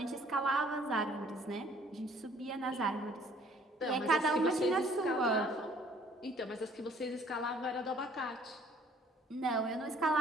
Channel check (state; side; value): normal; both; correlation 0.58